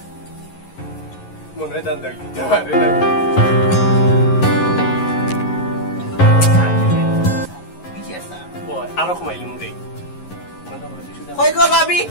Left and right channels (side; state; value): right; late; 11 ms